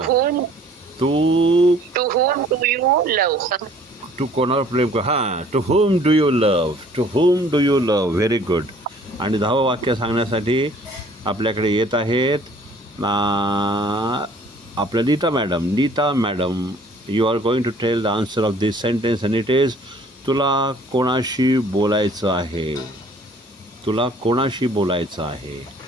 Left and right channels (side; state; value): both; normal; correlation 0.55